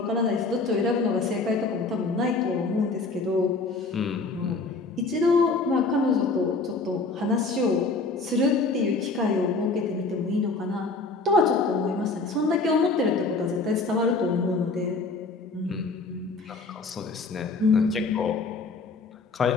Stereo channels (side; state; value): right; quieter; 3.8 dB